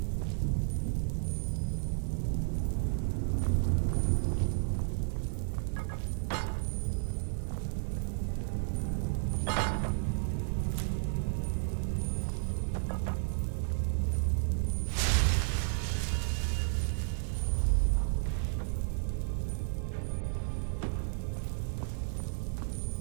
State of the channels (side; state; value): left; silent; 56 dB below the other